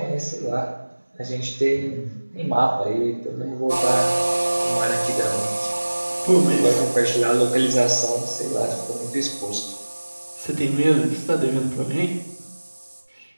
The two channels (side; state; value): both; inverted; correlation -1.00